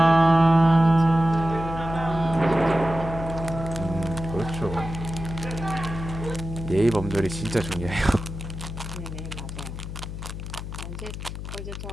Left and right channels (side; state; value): left; noise; hum, 8 dB below the sound